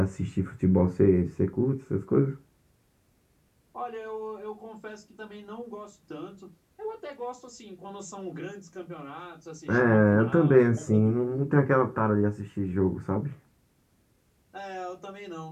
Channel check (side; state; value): both; identical; correlation 1.00